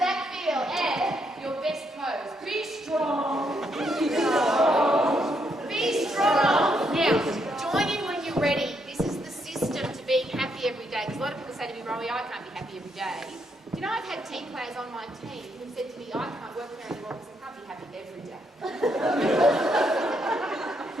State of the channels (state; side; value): normal; both; correlation 0.76